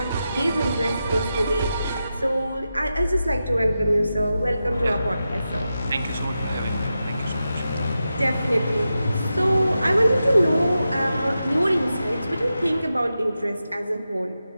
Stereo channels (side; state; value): both; inverted; correlation -0.90